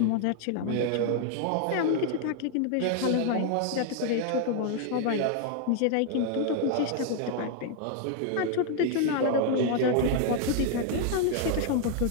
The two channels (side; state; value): both; different; correlation 0.00